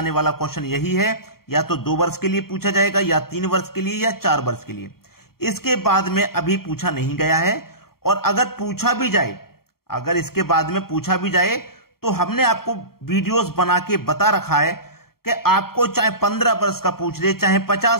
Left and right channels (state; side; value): late; right; 0.93 ms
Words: वाला क्वेश्चन यही है, या तो 2 वर्ष के लिए पूछा जाएगा, या 3 वर्ष के लिए, या 4 वर्ष के लिए। इसके बाद में अभी पूछा नहीं गया है। और अगर पूछा भी जाए, अगर इसके बाद में पूछा भी जाए तो हमने आपको वीडियोस बना के बता रखा है कि आपको चाहे 15 वर्ष का पूछ ले, चाहे